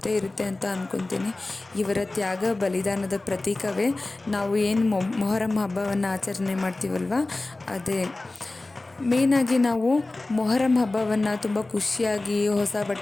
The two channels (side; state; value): right; quieter; 3.0 dB